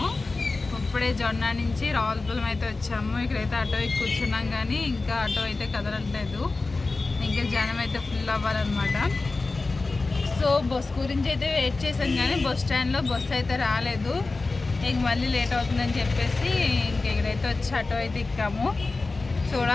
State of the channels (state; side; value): quieter; right; 3.6 dB